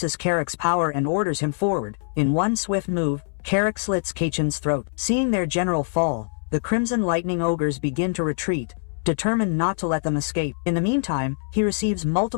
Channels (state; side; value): silent; right; 63 dB below the other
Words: Carrick's power and orders him forward. In one swift move, Carrick slits Kaichin's throat. Seeing their general fall, the Crimson Lightning ogres begin to retreat, determined not to let them escape. In the meantime, he receives